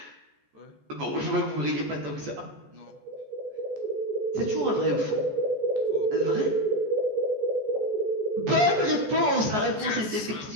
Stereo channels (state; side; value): late; left; 14 ms